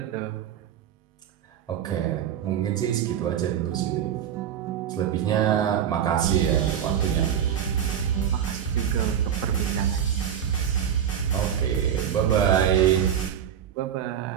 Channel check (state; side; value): quieter; left; 9.3 dB